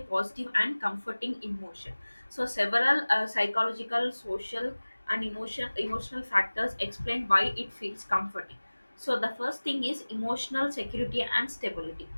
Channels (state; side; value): inverted; both; correlation -1.00